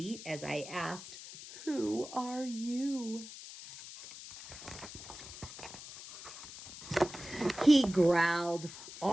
as I asked, "Who are you?" He growled,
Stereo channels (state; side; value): noise; left; hiss, 13 dB below the sound